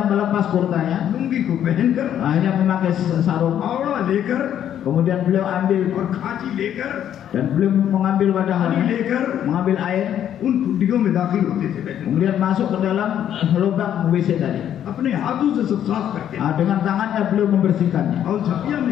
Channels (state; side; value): quieter; right; 10.2 dB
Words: melepas kurtanya, lungi को पहनकर, hanya memakai sarung. आवड़ा लेकर Kemudian beliau ambil और खांची लेकर, dan beliau mengambil पानी wadahnya, लेकर mengambil air, उन खुड्डियों में दाखिल होते थे Betul, kemudian masuk ke dalam lubang WC tadi. अपने हाथों से सब साफ करते Nah, dengan tangannya beliau membersihkannya. और झपिया में